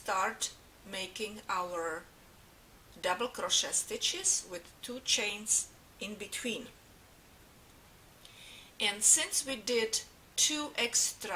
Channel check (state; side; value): identical; both; correlation 1.00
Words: making our double crochet stitches with 2 chains in between. And since we did 2